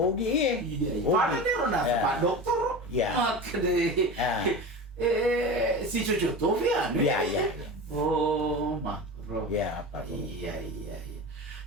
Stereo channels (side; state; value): both; normal; correlation 0.28